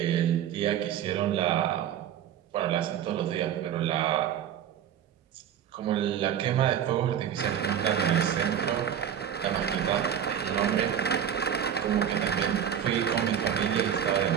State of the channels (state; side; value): quieter; left; 9.3 dB